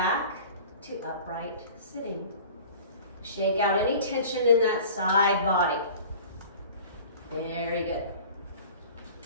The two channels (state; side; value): inverted; both; correlation -0.42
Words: to upright sitting. Shake out any tension in that side body. Very good.